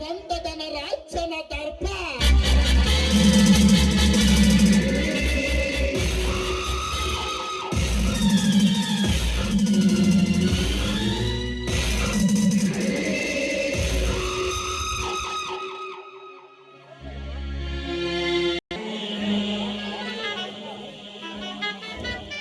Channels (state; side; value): identical; both; correlation 1.00